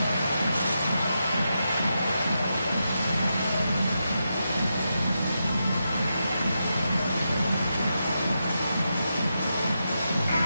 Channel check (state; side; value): inverted; both; correlation -0.86